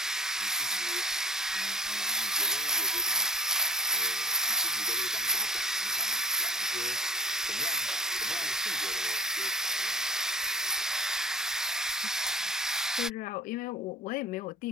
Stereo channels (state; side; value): normal; both; correlation 0.40